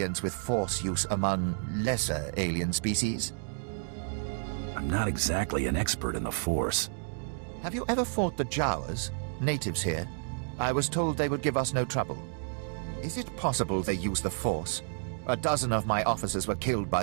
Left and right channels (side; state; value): left; silent; digital silence